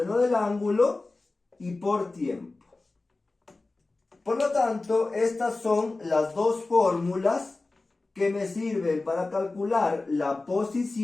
del ángulo y por tiempo. Por lo tanto, estas son las dos fórmulas que me sirven para calcular la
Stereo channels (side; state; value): right; quieter; 3.3 dB